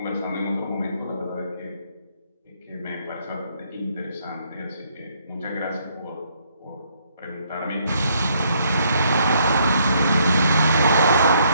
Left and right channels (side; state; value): both; inverted; correlation -0.69